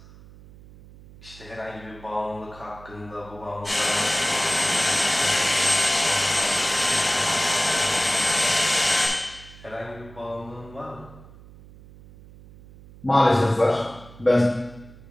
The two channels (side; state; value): right; noise; hum, 21 dB below the sound